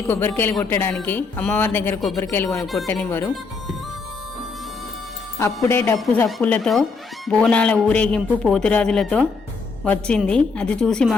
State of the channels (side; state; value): right; quieter; 4.5 dB